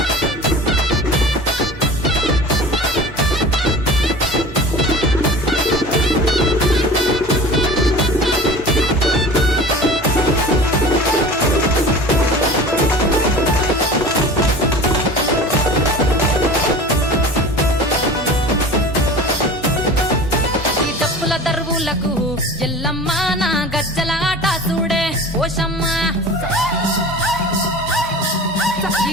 దరువులకు ఎల్లమ్మ నా గజ్జల ఆట చూడే పోషమ్మ ఈ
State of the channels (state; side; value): normal; both; correlation 0.38